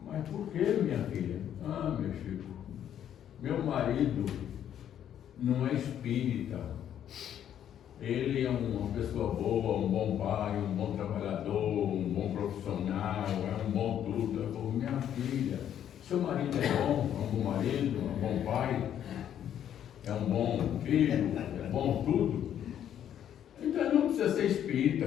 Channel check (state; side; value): quieter; right; 10.1 dB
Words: Mas por que, minha filha? Ah, meu Chico, meu marido não é espírita. Ele é uma pessoa boa, um bom pai, um bom trabalhador, um bom profissional, é um bom tudo. Eu falei: minha filha, seu marido é um bom marido, é um bom pai, é um bom filho, é bom tudo. Então não precisa ser